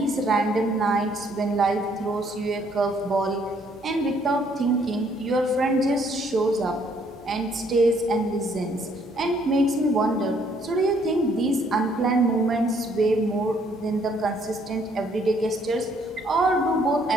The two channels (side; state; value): both; normal; correlation 0.66